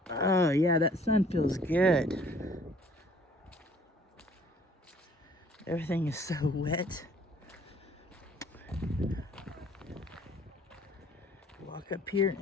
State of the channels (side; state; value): both; normal; correlation 0.57